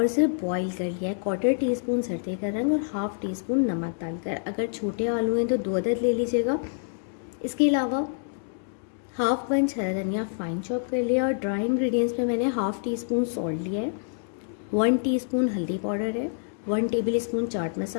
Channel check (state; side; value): silent; right; digital silence